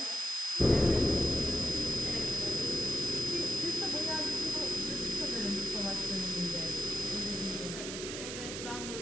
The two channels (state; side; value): noise; right; hiss, 6 dB below the sound